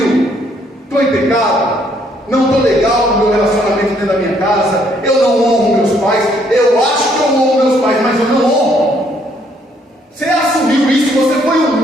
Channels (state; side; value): normal; both; correlation 0.68